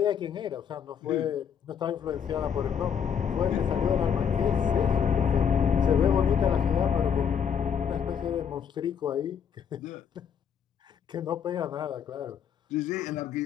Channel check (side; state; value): right; quieter; 7.6 dB